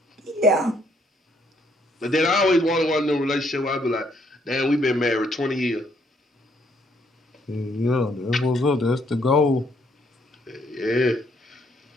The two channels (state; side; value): normal; both; correlation 0.69